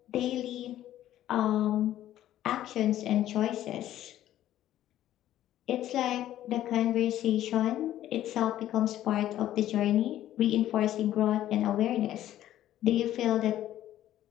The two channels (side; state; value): right; quieter; 12.8 dB